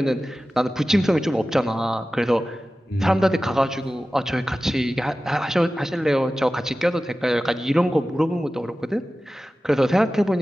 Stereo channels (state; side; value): normal; both; correlation 0.95